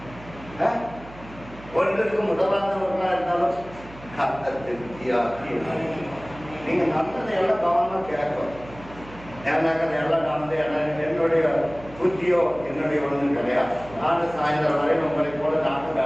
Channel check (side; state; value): right; noise; hum, 18 dB below the sound